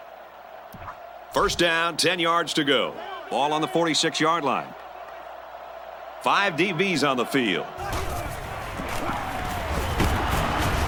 First down, 10 yards to go. Ball on the 46-yard line. 5 DBs on the field.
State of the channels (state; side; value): identical; both; correlation 1.00